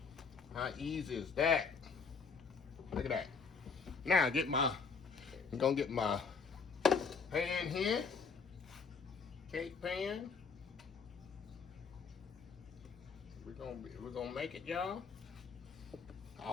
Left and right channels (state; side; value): quieter; right; 5.3 dB